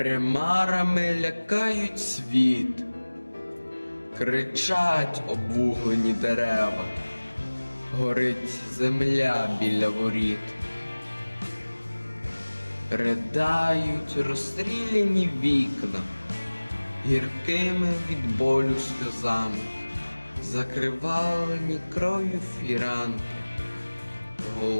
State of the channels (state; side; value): inverted; both; correlation -1.00